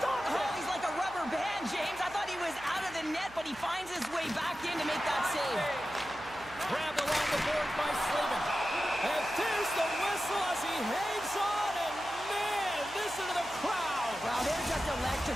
it! Oh, he's like a rubber band, James. I thought he was out of the net, but he finds his way back in to make that save. Grabbed along the board by Slavin. And there's the whistle as he hangs on, and man, listen to the crowd. Wow, they're just electric.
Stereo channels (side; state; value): right; noise; hum, 20 dB below the sound